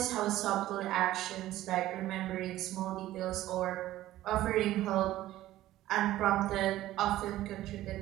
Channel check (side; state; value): left; quieter; 14.7 dB